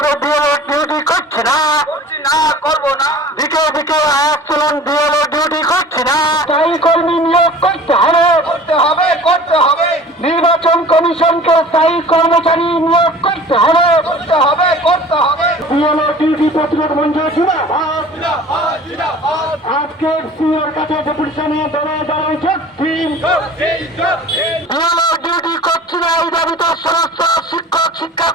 বিএলও ডিউটি করছি না, করবো না। দিকে দিকে আচরণ বিএলও ডিউটি করছি না। স্থায়ী কর্মী নিয়োগ করতে হবে, করতে হবে। নির্বাচন কমিশনকে স্থায়ী কর্মচারী নিয়োগ করতে হবে, করতে হবে। বিএলও ডিউটি প্রতিরোধ মঞ্চ জিন্দাবাদ। আজকে সিওর কাছে ডেপুটেশনে দলে দলে বিএলও ডিউটি করছি না এই দাবিতে সমস্ত শিক্ষক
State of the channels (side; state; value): both; normal; correlation 0.43